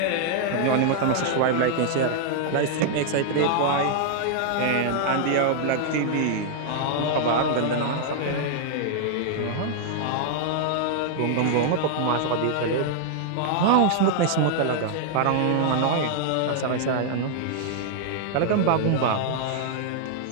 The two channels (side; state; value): both; different; correlation -0.01